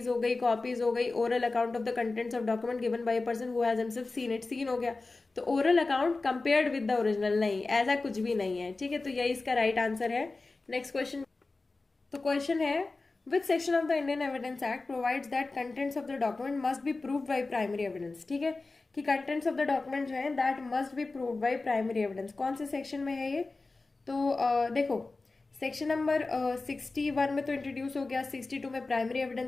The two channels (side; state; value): right; quieter; 3.5 dB